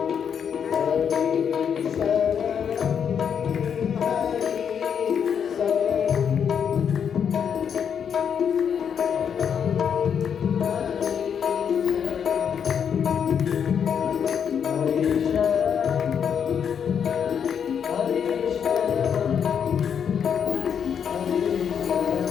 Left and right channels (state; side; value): quieter; right; 7.7 dB